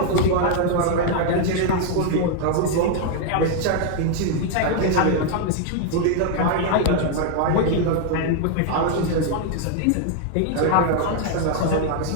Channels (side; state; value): both; different; correlation 0.00